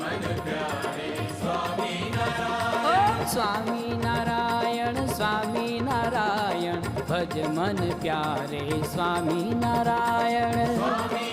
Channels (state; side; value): identical; both; correlation 1.00